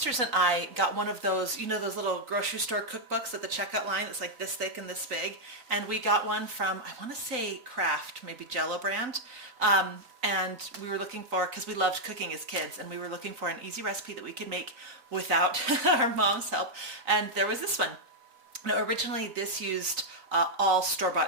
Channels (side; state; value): left; late; 3.9 ms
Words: and I got one of those, you know, those little grocery store cookbooks at the checkout line. It's like this thick and this big. And we got one from, I want to say Kraft, maybe Jell-O brand. And we were looking for, because we loved cooking as kids, and we were looking for an easy recipe that we could make without our mom's help. And there was this one. Now, originally this used all